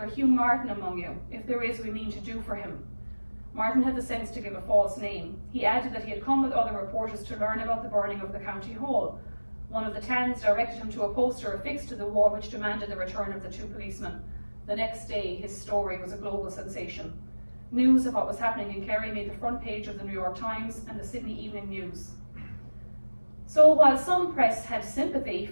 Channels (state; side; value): inverted; both; correlation -1.00